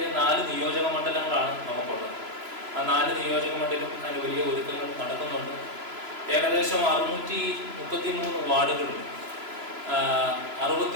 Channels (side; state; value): left; late; 3.0 ms